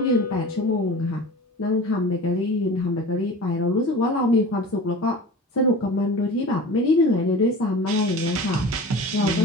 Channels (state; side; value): normal; both; correlation 0.37